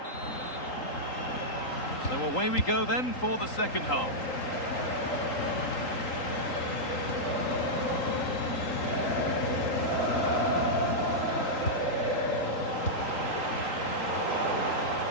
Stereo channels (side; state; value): right; late; 3.8 ms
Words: So away we go then for the second half.